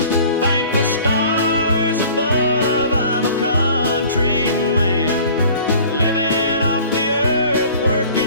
Thank the stars above, I'm a country man, living off the earth,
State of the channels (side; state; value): both; inverted; correlation -0.47